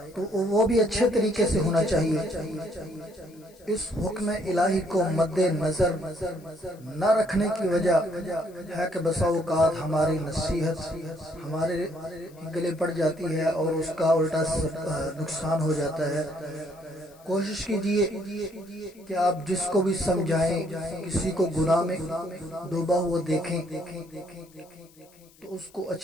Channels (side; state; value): left; noise; hiss, 28 dB below the sound